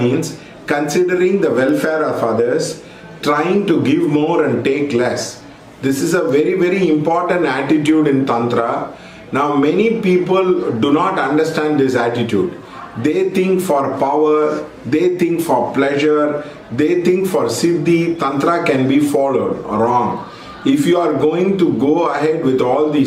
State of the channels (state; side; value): identical; both; correlation 1.00